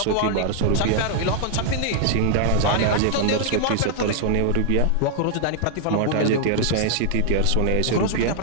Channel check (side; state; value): both; different; correlation 0.00